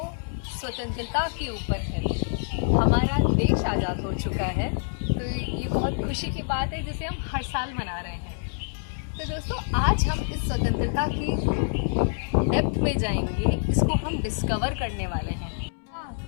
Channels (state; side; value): silent; right; 61 dB below the other